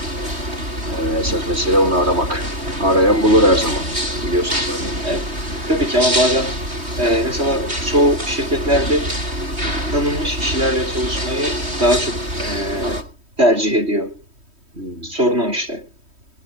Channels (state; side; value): late; left; 3.1 ms